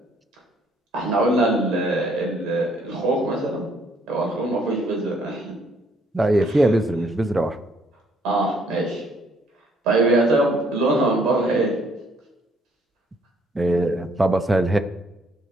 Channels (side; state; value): both; normal; correlation 0.65